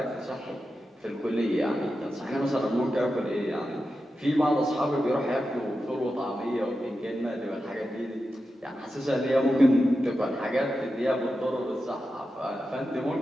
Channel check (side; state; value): both; normal; correlation 0.90